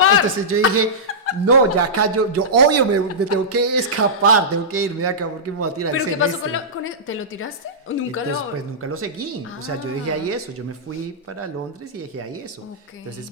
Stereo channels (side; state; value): both; normal; correlation -0.15